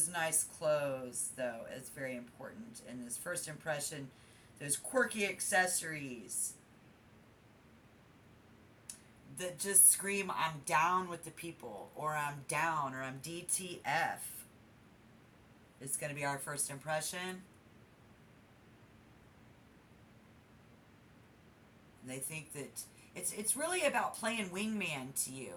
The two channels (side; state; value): both; identical; correlation 1.00